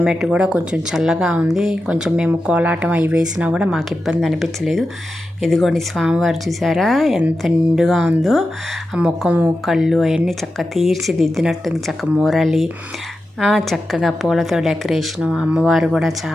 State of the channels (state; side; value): normal; both; correlation 0.91